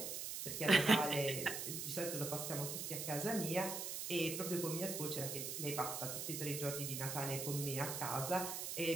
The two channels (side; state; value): right; noise; hiss, 4 dB below the sound